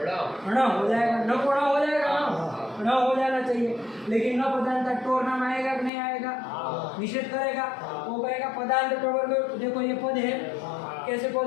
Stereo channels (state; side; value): drops out; right; at 5.9 s